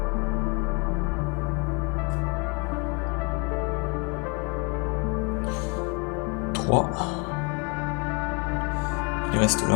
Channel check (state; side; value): quieter; right; 31.4 dB